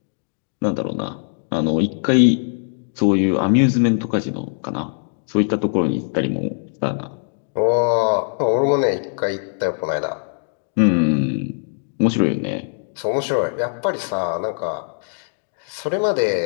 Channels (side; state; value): right; silent; digital silence